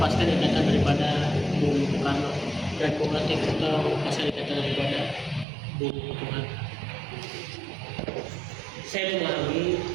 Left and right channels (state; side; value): drops out; left; at 5.5 s